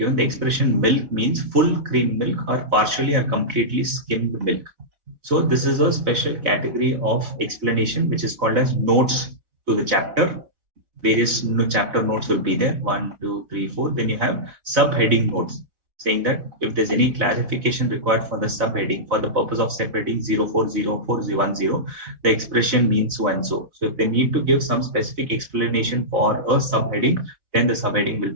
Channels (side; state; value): left; late; 4.2 ms